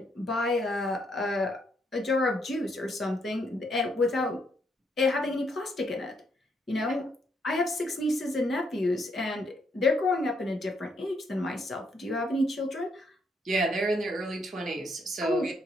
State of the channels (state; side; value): normal; both; correlation 0.74